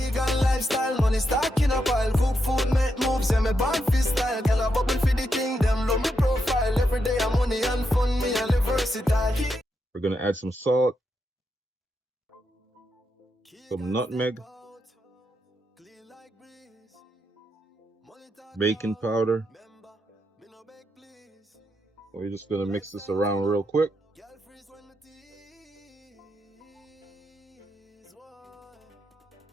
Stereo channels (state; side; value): normal; both; correlation 0.83